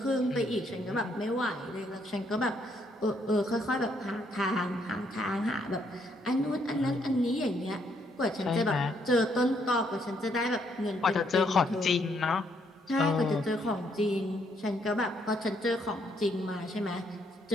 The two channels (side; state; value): both; normal; correlation 0.71